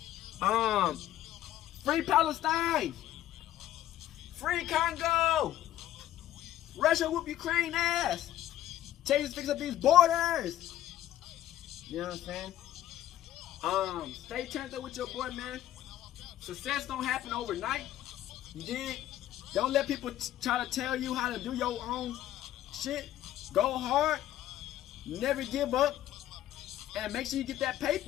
Free Palestine. Free Congo. Russia whoop Ukraine ass. Change fix up these borders. You know what I'm saying? Stay turned up with your boy, man. Success don't happen overnight. You dig? Don't let people try to tell you how to do your own shit. Go hard. Never give up. And make sure you get that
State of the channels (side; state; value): right; quieter; 12.9 dB